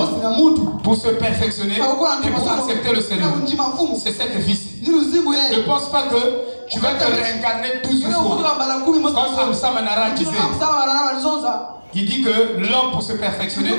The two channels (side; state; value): both; inverted; correlation -1.00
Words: pour se perfectionner et pour accepter le Seigneur. C'est cette vie-ci. Ne pense pas que tu vas te réincarner 12 fois. Comme Sam Manara disait. Il dit que l'homme, pour se perfectionner,